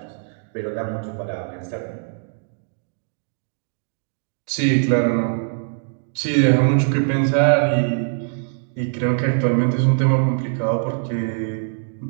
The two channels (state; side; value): silent; left; digital silence